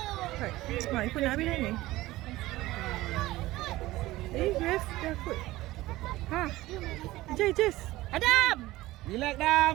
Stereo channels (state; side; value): quieter; left; 17.7 dB